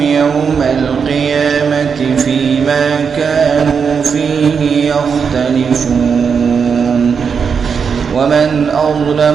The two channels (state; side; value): quieter; left; 6.2 dB